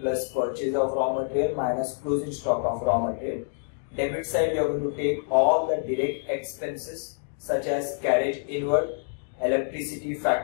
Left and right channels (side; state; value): right; silent; digital silence